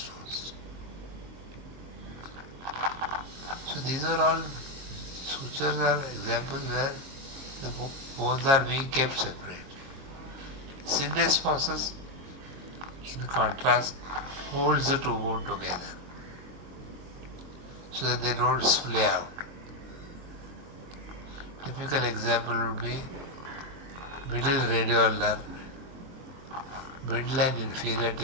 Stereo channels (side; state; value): left; late; 22 ms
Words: So these are all, sutures are examples where the bones are being kept separate. Syndesmosis, in contrast, holds the two bones together so that they don't splay out. Typical example would be middle radioulnar, middle and inferior